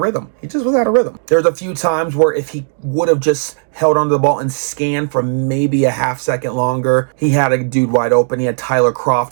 rhythm. He just was out of rhythm. There's a few times where if he would have just held onto the ball and scanned for maybe a half second longer, he had a dude wide open. He had Tyler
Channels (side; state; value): left; silent; digital silence